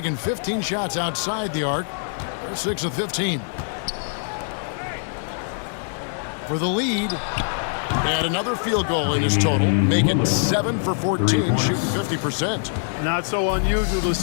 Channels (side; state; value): right; silent; digital silence